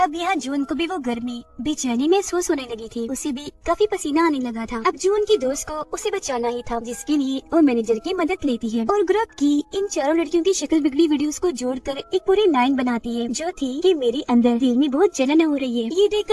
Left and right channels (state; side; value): identical; both; correlation 1.00